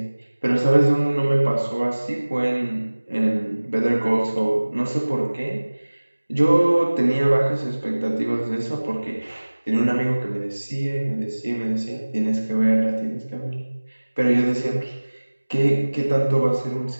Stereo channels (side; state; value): both; inverted; correlation -1.00